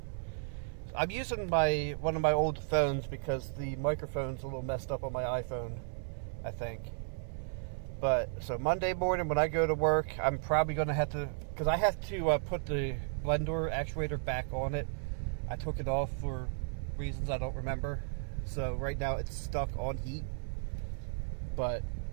I'm using one of my old phones because the microphone's a little messed up on my iPhone, I think. But, so Monday morning when I go to work, I'm probably going to have to, because I have to put the blend door actuator back on it. I took it off for reasons I don't remember. So right now it's stuck on heat. But,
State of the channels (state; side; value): silent; left; 55 dB below the other